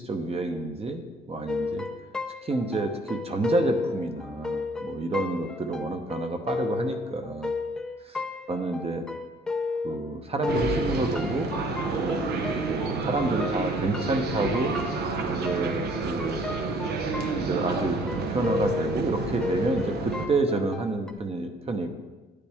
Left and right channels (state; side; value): normal; both; correlation 0.59